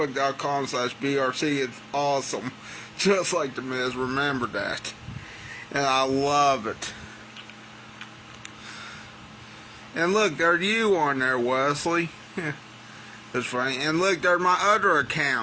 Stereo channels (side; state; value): both; identical; correlation 1.00